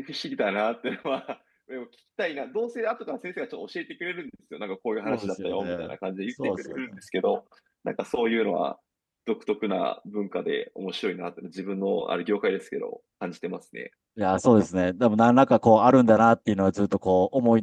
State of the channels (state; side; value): identical; both; correlation 1.00